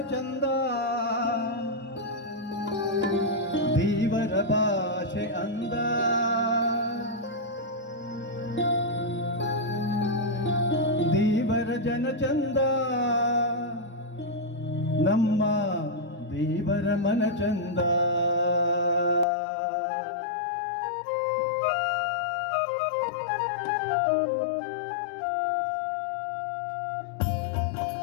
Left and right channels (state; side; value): drops out; right; at 19.2 s